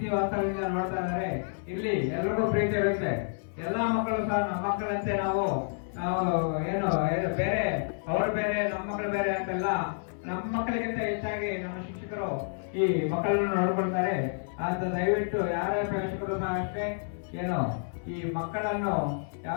ವಾಸ್ತವದಿಂದ ನೋಡ್ತಾ ಇದ್ದಾರೆ. ಇಲ್ಲಿ ಎಲ್ರಿಗೂ ಪ್ರೀತಿ ಇರುತ್ತೆ. ಎಲ್ಲಾ ಮಕ್ಕಳು ಸಹ ನಮ್ಮ ಮಕ್ಕಳಂತೆ ನಾವು ಏನು ಬೇರೆ ಅವರು ಬೇರೆ ನಮ್ಮ ಮಕ್ಕಳು ಬೇರೆ ಅಂತೆಲ್ಲ, ನಮ್ಮ ಮಕ್ಕಳಿಗಿಂತ ಹೆಚ್ಚಾಗಿ ನಮ್ಮ ಶಿಕ್ಷಕರು ಈ ಮಕ್ಕಳನ್ನು ನೋಡ್ಕೊಳ್ತಾರೆ ಅಂತ ದಯವಿಟ್ಟು ಯಾರೇ ಪೋಷಕರು ಸಹ ಅಷ್ಟೇ ಏನು ಈ ಮಕ್ಕಳನ್ನು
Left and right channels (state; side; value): silent; right; 58 dB below the other